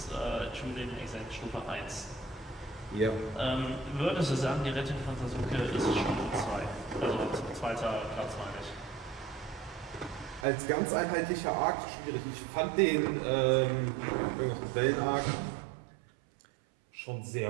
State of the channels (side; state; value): left; drops out; at 10.5 s